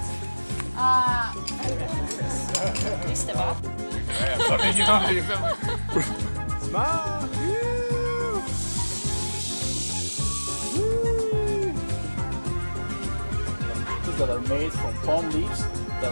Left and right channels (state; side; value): inverted; both; correlation -1.00